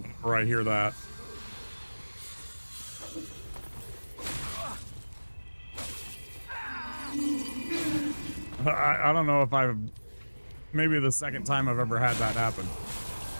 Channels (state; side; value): inverted; both; correlation -1.00